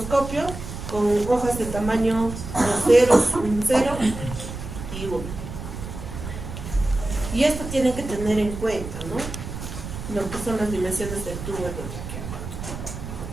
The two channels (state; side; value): noise; right; rumble, 9 dB below the sound